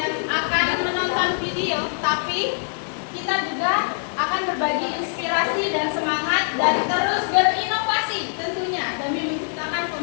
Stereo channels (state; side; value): silent; right; 63 dB below the other